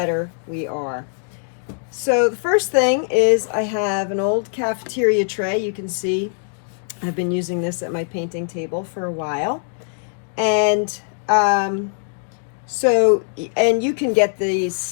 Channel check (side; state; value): right; silent; digital silence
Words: we are. So the first thing is I have an old cafeteria tray. You can see I've been using this at my painting table for a while. And and you can get